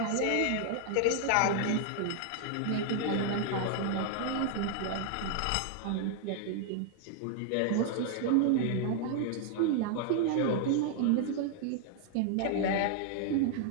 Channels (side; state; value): both; different; correlation 0.00